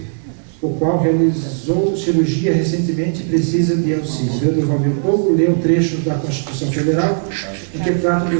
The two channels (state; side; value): silent; left; digital silence